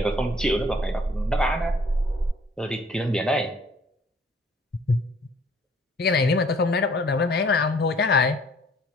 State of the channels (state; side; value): normal; both; correlation 0.58